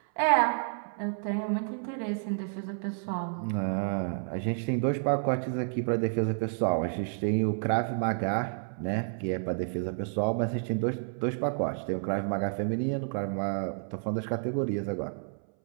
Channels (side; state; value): left; silent; 58 dB below the other